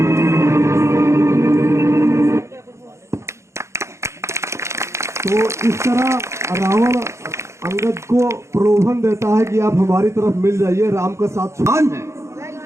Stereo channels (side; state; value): left; late; 0.14 ms